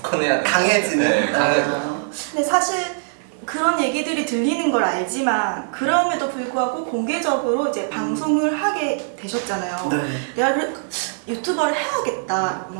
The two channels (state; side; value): silent; left; digital silence